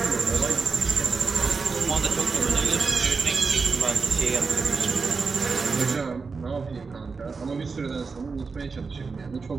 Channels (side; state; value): left; quieter; 4.7 dB